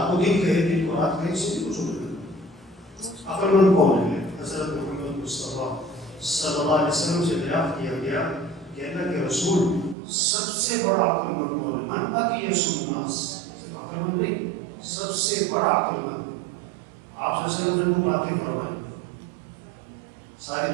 کو دن کہے دن کو رات کہے, اس سے کچھ نہیں. عقل مند کون ہے؟ حضرت محمد مصطفیٰ صلی اللہ علیہ وسلم سے دریافت کیا گیا کہ اللہ کے رسول سب سے بڑا عقل مند کون ہے؟ من اقیس الناس, صرف عقل مند نہیں, سب سے بڑا عقل مند. آپ صلی اللہ علیہ وسلم نے باتیں فرمائیں. ساری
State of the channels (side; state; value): left; drops out; at 10.0 s